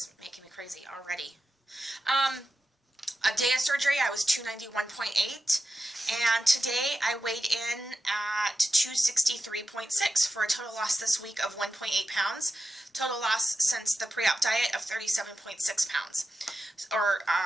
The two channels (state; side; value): normal; both; correlation 0.90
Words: making me crazy already. A day of surgery, I was 291.8. And today I weighed in at 263.6 for a total loss this week of 1.8 pounds. Total loss since the pre-op diet of 37.6 pounds, or